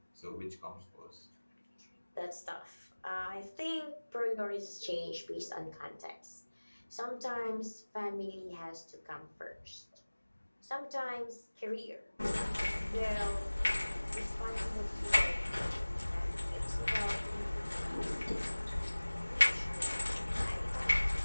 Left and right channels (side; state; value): both; inverted; correlation -1.00